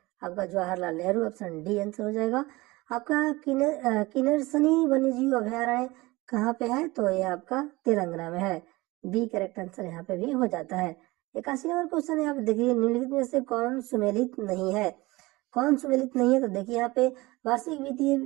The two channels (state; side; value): quieter; left; 21.4 dB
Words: आपका Jawaharlal Nehru, option D answer हो जाएगा। आपका किन्नरसनी वन्यजीव अभयारण्य कहाँ पे है? तो ये आपका तेलंगाना में है, बी करेक्ट आंसर यहाँ पे भी हो जाता है। 81 नंबर क्वेश्चन है, आप देखिए निम्नलिखित में से कौन सुमेलित नहीं है? कौन सुमेलित नहीं है? तो देखिए यहाँ पे वार्षिक